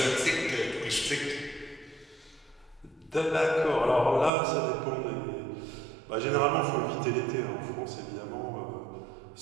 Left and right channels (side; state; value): left; drops out; at 4.3 s